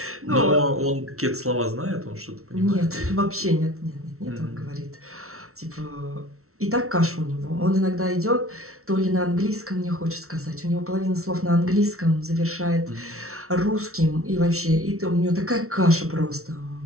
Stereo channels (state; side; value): late; left; 0.63 ms